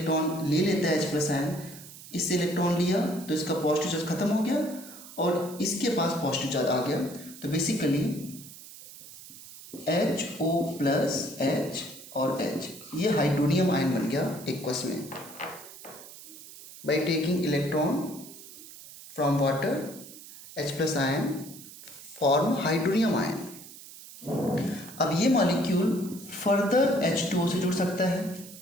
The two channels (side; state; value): right; noise; hiss, 16 dB below the sound